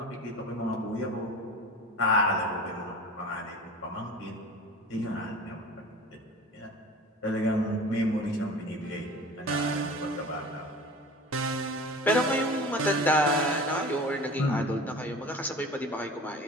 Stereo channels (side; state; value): both; normal; correlation 0.38